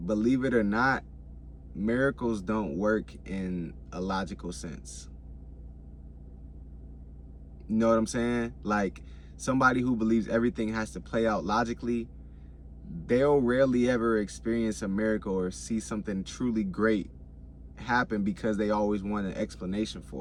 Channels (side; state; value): both; identical; correlation 1.00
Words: believe it or not, miracles don't work in a logical sense. You know what I'm saying? Like somebody who believes everything has to play out logically, they'll rarely ever experience a miracle or see something truly great happen because they always want an explanation